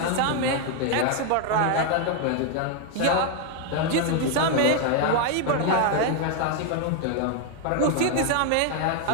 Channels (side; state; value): both; different; correlation 0.00